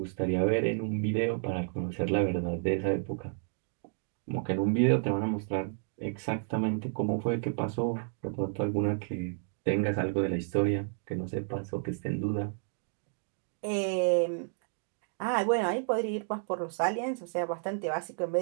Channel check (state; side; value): silent; left; 57 dB below the other